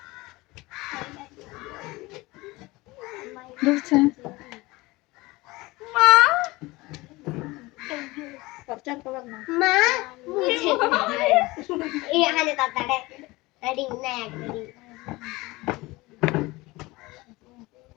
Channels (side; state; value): right; quieter; 21.5 dB